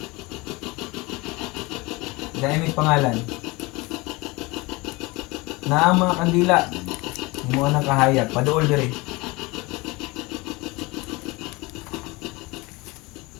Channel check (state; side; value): quieter; right; 23.8 dB